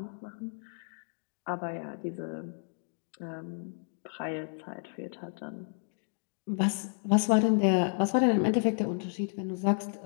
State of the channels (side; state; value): right; silent; 57 dB below the other